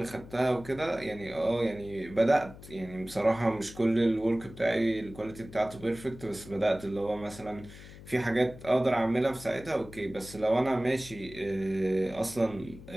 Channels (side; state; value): left; noise; hum, 17 dB below the sound